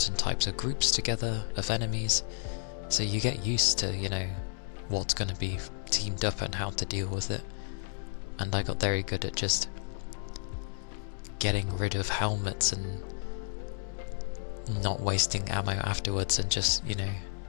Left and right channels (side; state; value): right; silent; digital silence